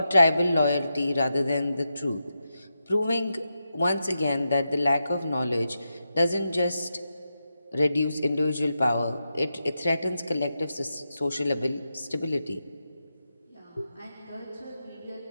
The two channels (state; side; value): inverted; both; correlation -0.88